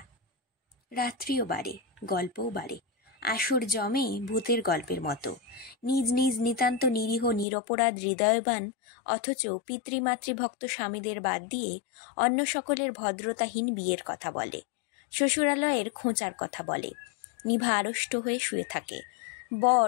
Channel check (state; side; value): drops out; right; at 7.5 s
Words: রাত্রিও বাড়ে, গল্পও বাড়ে। আসর জমে ভূতের গল্পের মতো। নিজ নিজ নিতান্ত নিরীহ নিরপরাধ হৃদয়বান অথচ পিতৃমাতৃভক্ত স্বামীদের বাদ দিয়ে অন্য সকলের ভদ্রতাহীন বিয়ের কথা বলে, শ্বশুরালয়ের খোঁচার কথা বলে। নিভা আড়ষ্ট হয়ে শুয়ে থাকে। বর